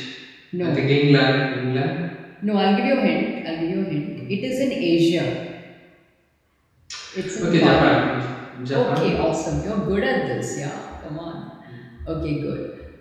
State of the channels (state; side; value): identical; both; correlation 1.00